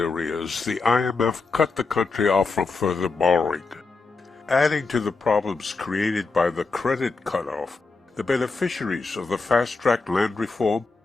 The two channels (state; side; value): quieter; right; 4.1 dB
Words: the IMF cut the country off from further borrowing. Adding to the problems created by the credit cutoff, the beneficiaries of the fast-track land reform